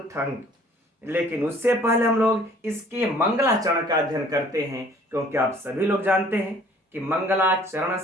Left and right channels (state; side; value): normal; both; correlation 0.55